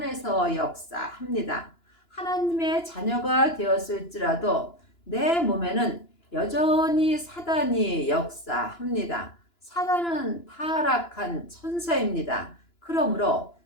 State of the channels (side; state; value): right; late; 2.9 ms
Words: 역사합니다. 하나님의 자녀가 되었을지라도 내 몸에는 여전히 사단이 역사합니다. 사단은 타락한 천사입니다. 그러므로